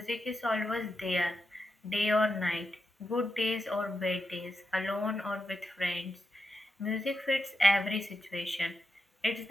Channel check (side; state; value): both; normal; correlation 0.87